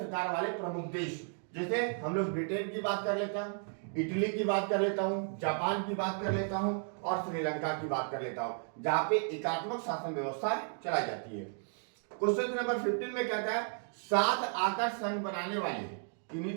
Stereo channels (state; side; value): silent; left; 55 dB below the other